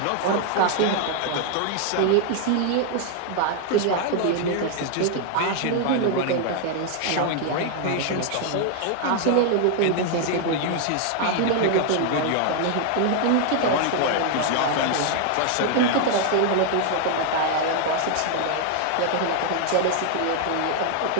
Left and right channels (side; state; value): both; different; correlation 0.00